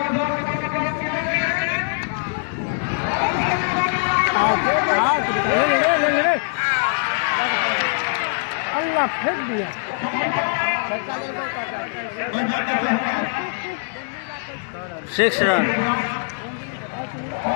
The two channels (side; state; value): right; silent; digital silence